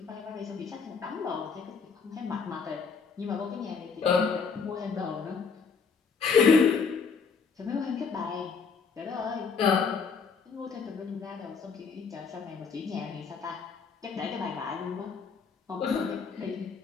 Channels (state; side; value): quieter; right; 5.5 dB